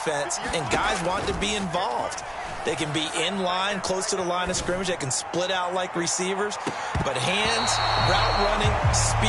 and guys want to be involved. They can be in line, close to the line of scrimmage. They can split out like receivers. But hands, route running,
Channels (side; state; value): both; identical; correlation 1.00